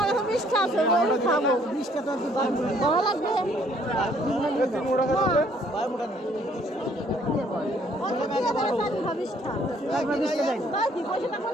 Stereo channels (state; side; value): normal; both; correlation 0.63